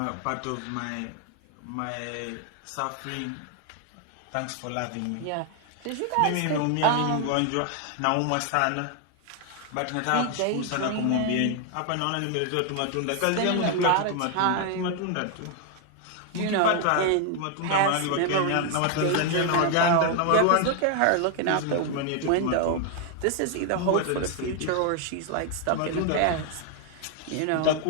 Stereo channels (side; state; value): both; different; correlation 0.00